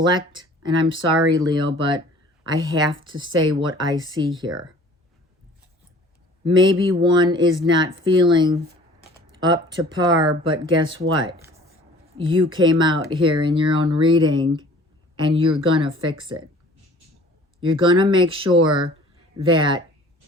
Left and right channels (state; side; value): normal; both; correlation 0.50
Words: And I'm sorry, Leo, but I have to say what I see here. Maybe one is not feeling up to par, but guess what? You came out here in your own reading and you're going to fix it. You're going to make sure that